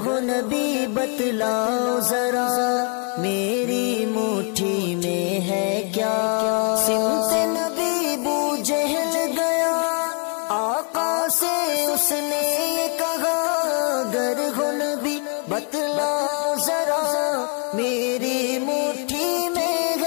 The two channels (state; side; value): quieter; right; 37.8 dB